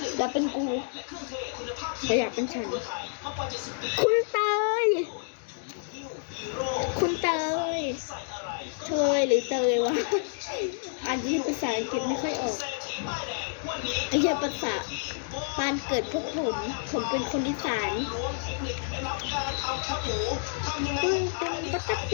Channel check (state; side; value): silent; right; digital silence